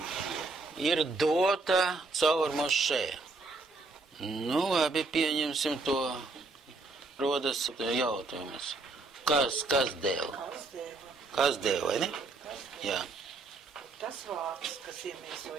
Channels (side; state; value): left; quieter; 3.6 dB